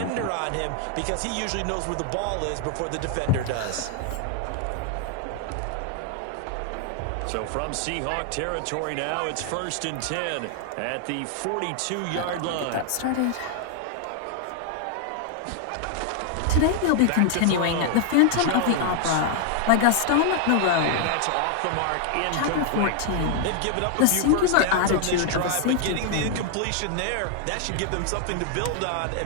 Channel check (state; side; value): different; both; correlation 0.00